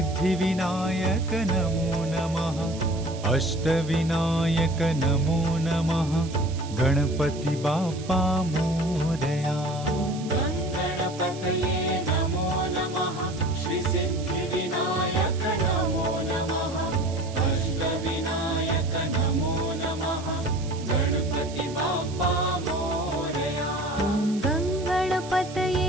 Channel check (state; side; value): noise; right; hiss, 17 dB below the sound